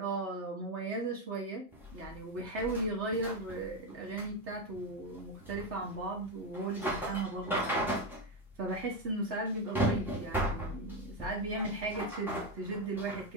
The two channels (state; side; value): normal; both; correlation 0.10